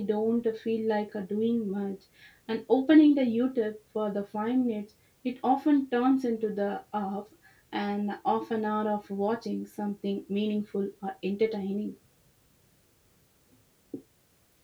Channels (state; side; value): identical; both; correlation 1.00